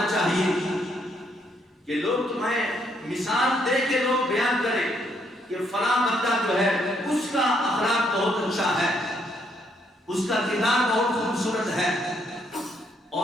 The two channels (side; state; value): both; normal; correlation 0.72